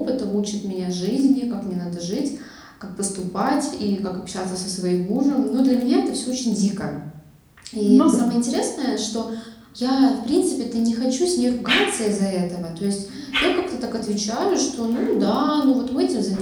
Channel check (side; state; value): both; identical; correlation 1.00